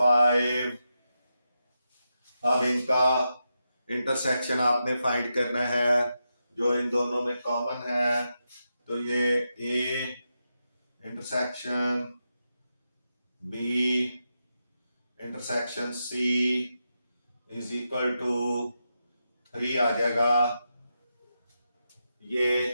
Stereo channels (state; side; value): inverted; both; correlation -0.87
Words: अब इनका इंटरसेक्शन आपने फाइंड करना है जो इन दोनों में कॉमन है। तो ये A intersection B intersection C is equal to 3 आ जाएगा।